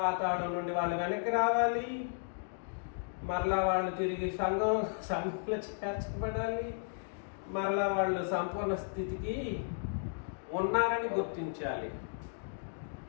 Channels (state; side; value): silent; right; digital silence